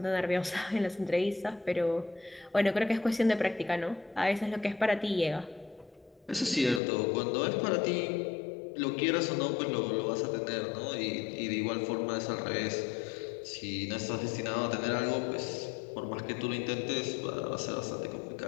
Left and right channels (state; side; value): drops out; right; at 6.8 s